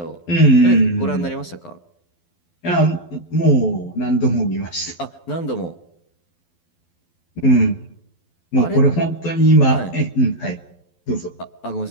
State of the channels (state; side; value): late; right; 12 ms